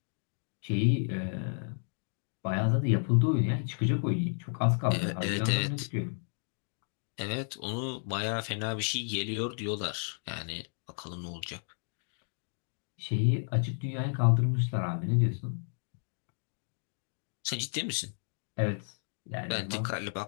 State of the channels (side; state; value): right; silent; digital silence